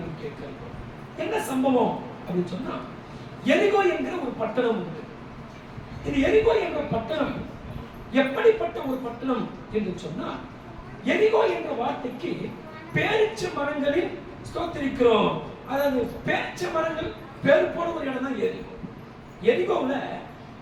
நாம் கேட்கிறோம். என்ன சம்பவம் அப்படின்னு சொன்னா, எரிகோ என்கிற ஒரு பட்டணம் உண்டு. இந்த எரிகோ என்ற பட்டணம் எப்படிப்பட்ட ஒரு பட்டணம் என்று சொன்னா, எரிகோ என்ற வார்த்தைக்கு பேரிச்ச மரங்களில் ஸ்தோத்திரிக்கிறோம். அதாவது பேரிச்ச மரங்கள் பேர் போன ஒரு இடம் தான் எரிகோ. எரிகோவுல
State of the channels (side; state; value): both; identical; correlation 1.00